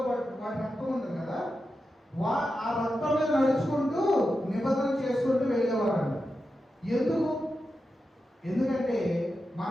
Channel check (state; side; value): normal; both; correlation 0.90